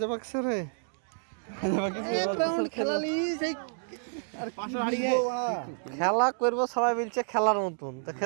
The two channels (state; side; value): silent; left; digital silence